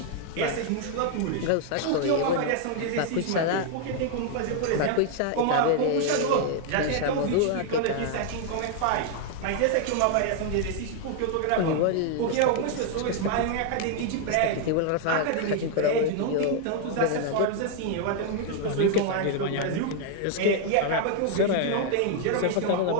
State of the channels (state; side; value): different; both; correlation 0.00